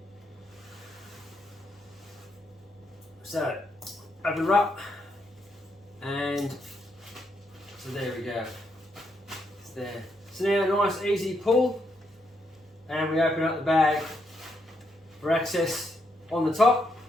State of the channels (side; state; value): both; normal; correlation 0.78